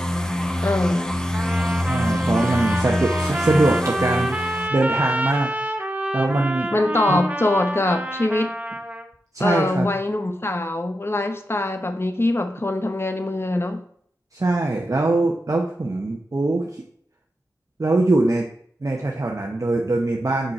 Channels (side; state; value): both; normal; correlation 0.88